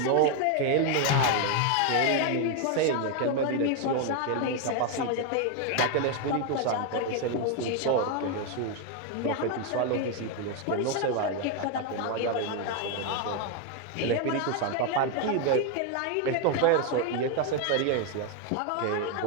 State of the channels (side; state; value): both; different; correlation 0.01